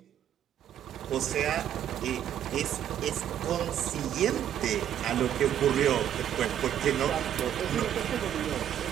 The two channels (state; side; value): quieter; left; 10.4 dB